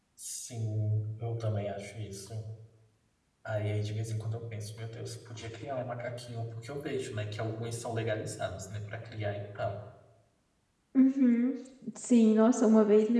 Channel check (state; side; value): identical; both; correlation 1.00